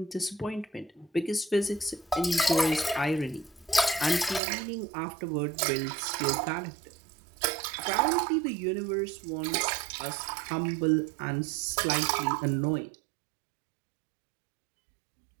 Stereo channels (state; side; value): drops out; left; at 4.4 s